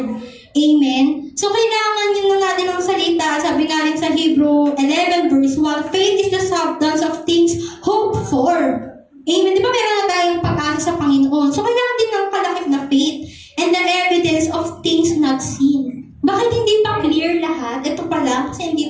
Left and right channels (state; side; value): identical; both; correlation 1.00